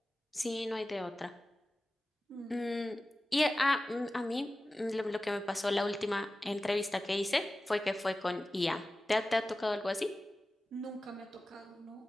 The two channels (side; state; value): both; normal; correlation 0.96